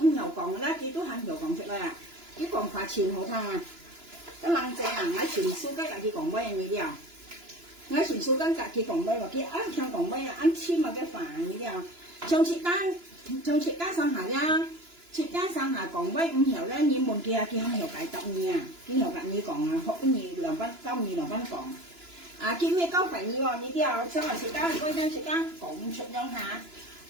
nhiều còn đó cái tôi hàng nhiều còn chút đây à cái còn phải chìm hậu thang à cái lăng trẻ à ngay chuyển số các cái còn bay như thế nào ngay chuyển số các cái còn bay và cái ăn theo còn bay ăn chim mà cái phản như thế nào trong chị cá sang hà ra chị cá sang hà còn bay không hiểu đấy như một kia không hiểu cái tập nha cái hiểu cái như còn họ cái gì làm văn câu như làm văn còn à cái mấy câu phải như thế nào xong rồi chị cá quay ra chị cá cũng chụp nhau hà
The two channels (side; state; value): left; late; 2.9 ms